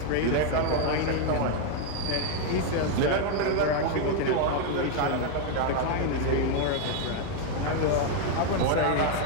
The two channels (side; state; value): both; different; correlation 0.00